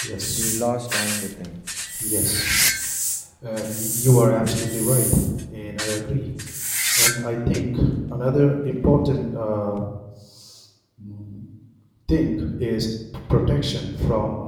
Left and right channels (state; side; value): identical; both; correlation 1.00